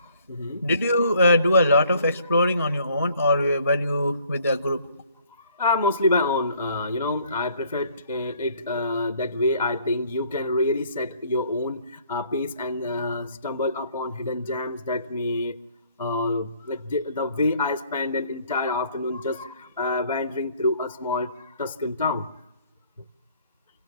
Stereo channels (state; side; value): inverted; both; correlation -0.61